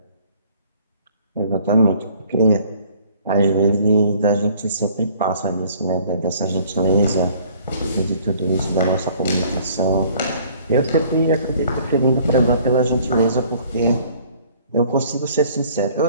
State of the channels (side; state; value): both; inverted; correlation -0.56